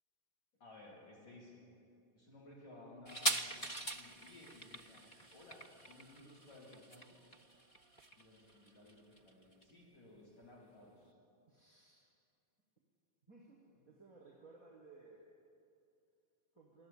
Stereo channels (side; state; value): right; late; 4.1 ms